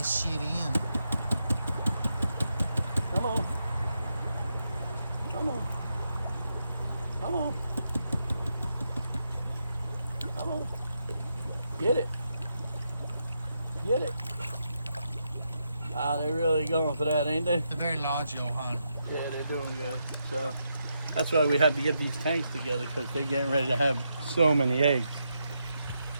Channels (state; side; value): inverted; both; correlation -0.83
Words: shit in. Come on. Come on. Come on. Come on. Get it. Get it. Wow, they're really going for that, ain't they? They're very large, Johan. Yeah, they're doing good. So that's why we had to get these tanks together, because they're getting ready to have so many eggs.